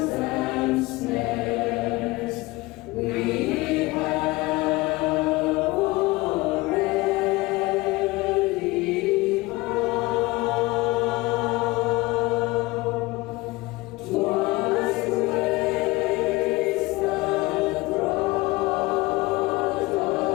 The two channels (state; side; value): quieter; right; 21.6 dB